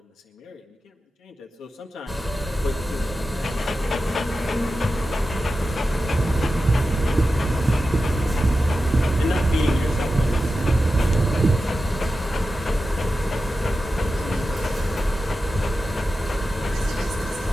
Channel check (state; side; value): normal; both; correlation 0.92